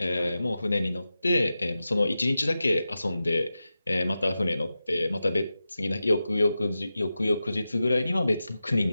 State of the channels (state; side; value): inverted; both; correlation -0.92